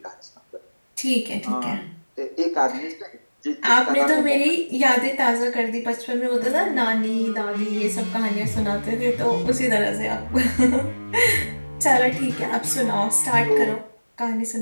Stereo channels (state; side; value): inverted; both; correlation -1.00